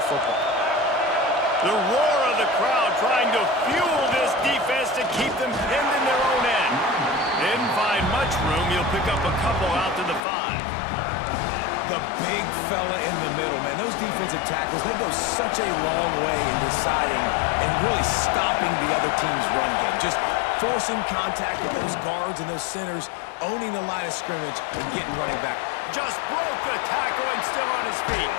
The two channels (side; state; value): right; drops out; at 10.2 s